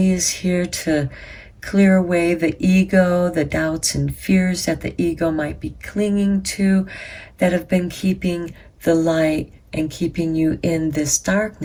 is here to clear away the ego, the doubts and fears that the ego might be clinging to, that have been keeping the light and keeping you in this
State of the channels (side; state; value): both; identical; correlation 1.00